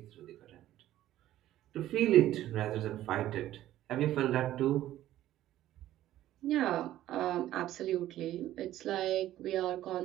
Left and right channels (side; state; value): left; quieter; 13.6 dB